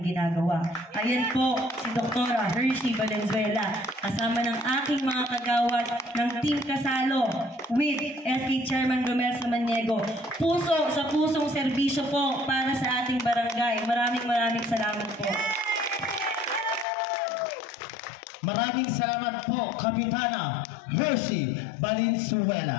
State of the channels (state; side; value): drops out; right; at 16.9 s